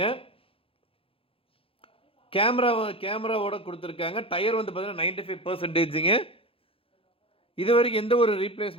கேமராவோட கொடுத்துருக்காங்க. டயர் வந்து பார்த்தீங்கன்னா 95%ங்க. இது வரைக்கும் எந்த ஒரு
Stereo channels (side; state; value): right; late; 0.27 ms